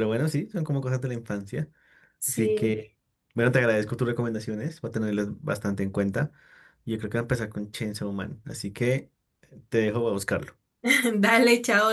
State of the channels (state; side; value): identical; both; correlation 1.00